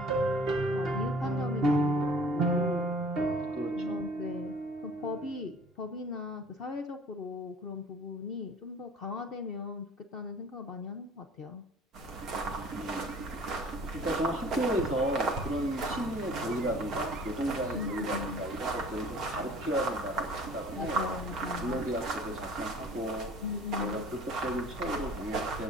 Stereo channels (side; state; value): both; normal; correlation 0.49